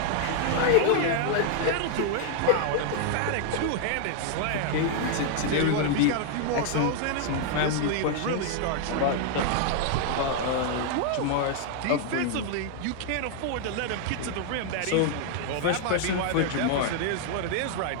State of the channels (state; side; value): different; both; correlation 0.00